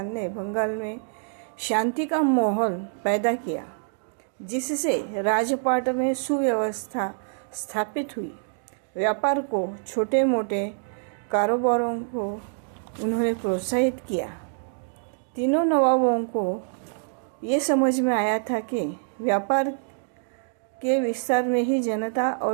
ने बंगाल में शांति का माहौल पैदा किया, जिससे राजपाट में सुव्यवस्था स्थापित हुई। व्यापार को, छोटे मोटे कारोबारों को उन्होंने प्रोत्साहित किया। तीनों नवाबों को ये समझ में आया था कि व्यापार के विस्तार में ही जनता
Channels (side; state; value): left; silent; digital silence